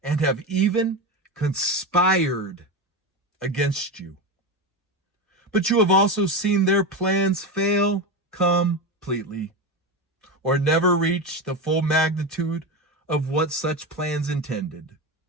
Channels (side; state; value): both; normal; correlation 0.18